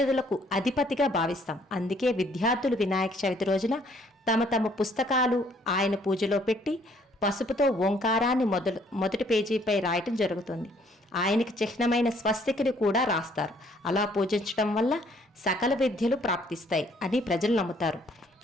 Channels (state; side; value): normal; both; correlation 0.63